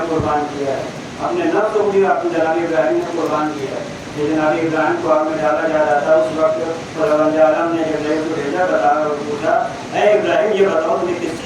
قربان کیا ہے اپنے نفس کو بھی اپنے جناب ابراہیم نے قربان کیا ہے. جناب ابراہیم کو آگ میں ڈالا جا رہا تھا اس وقت خداوند عالم نے ابراہیم کو بھیجا بتایا اور پوچھا اے ابراہیم یہ بتاؤ تمہیں کس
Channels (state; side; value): identical; both; correlation 1.00